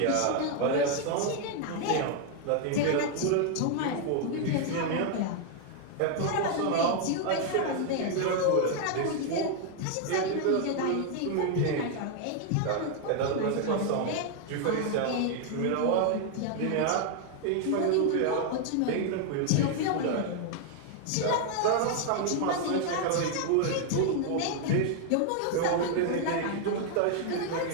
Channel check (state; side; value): different; both; correlation 0.00